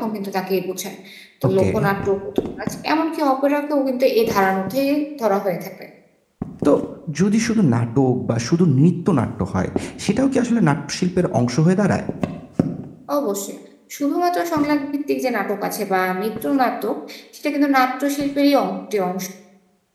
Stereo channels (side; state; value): both; identical; correlation 1.00